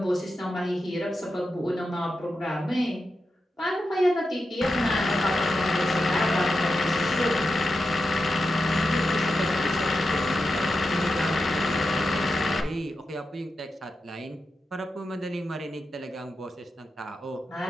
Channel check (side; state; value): both; normal; correlation 0.88